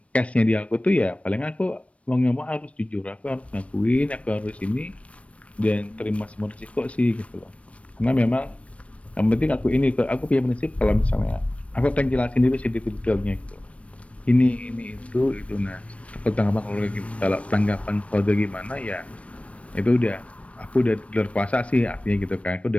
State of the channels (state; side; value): late; right; 0.064 ms